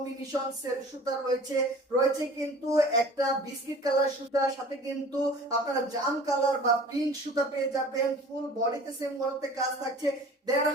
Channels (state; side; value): normal; both; correlation 0.44